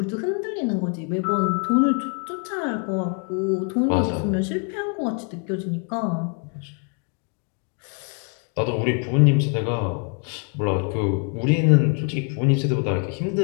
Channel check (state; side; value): quieter; right; 36.8 dB